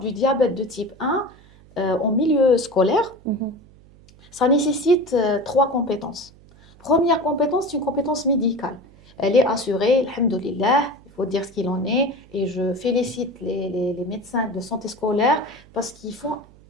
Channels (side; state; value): right; noise; hum, 25 dB below the sound